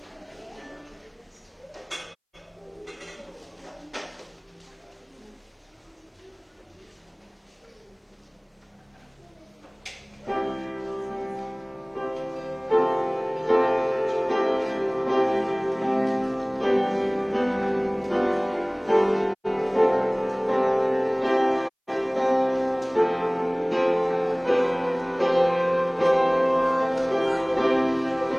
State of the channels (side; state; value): both; identical; correlation 1.00